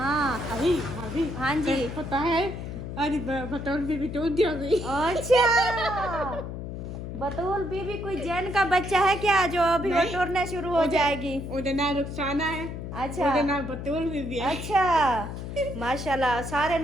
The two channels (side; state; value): left; noise; hum, 7 dB below the sound